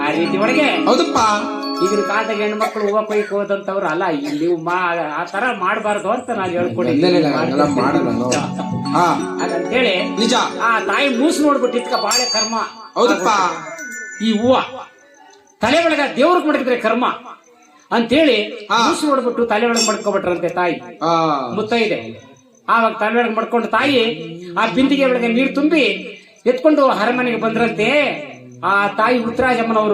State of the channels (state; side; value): identical; both; correlation 1.00